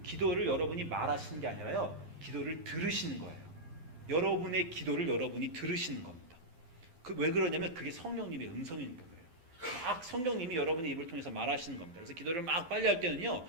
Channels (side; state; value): left; late; 12 ms